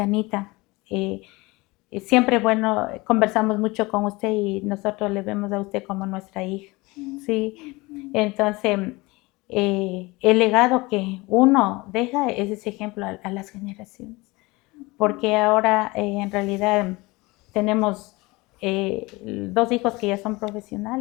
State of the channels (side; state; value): right; quieter; 23.1 dB